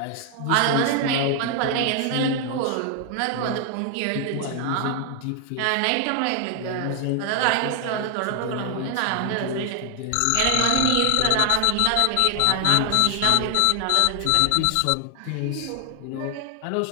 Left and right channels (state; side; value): different; both; correlation 0.00